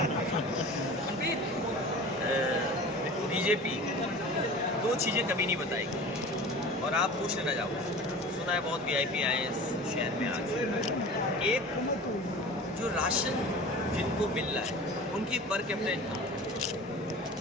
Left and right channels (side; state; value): both; normal; correlation 0.38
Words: बीजेपी 2 चीज़ें कभी नहीं बताएगी। और आप पूछ लेना जाओ, सुना है बहुत VIP आए हैं इस शहर में आज। एक जो राशन जिनको मिल रहा है उनकी पर कैपिटा इनकम,